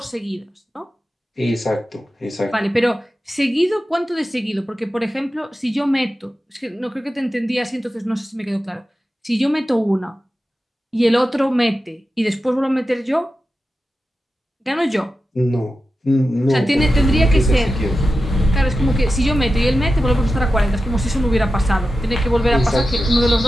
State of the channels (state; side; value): normal; both; correlation 0.92